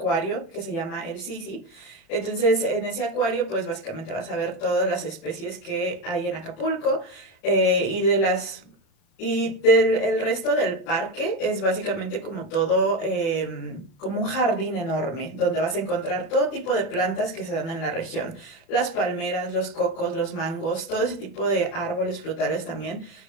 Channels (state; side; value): late; right; 36 ms